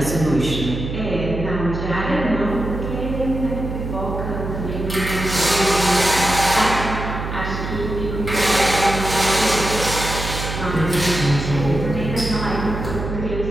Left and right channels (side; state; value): right; noise; hum, 6 dB below the sound